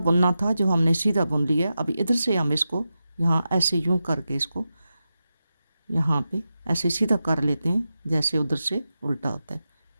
बुनना था जो हमने सीधा बुन लिया। अभी इधर से हम इसको यहाँ ऐसे यूं करके इसको यहाँ पे ऐसे सीधा कर लेते हैं जैसे उधर से उल्टा होता है।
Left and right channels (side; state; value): both; inverted; correlation -0.91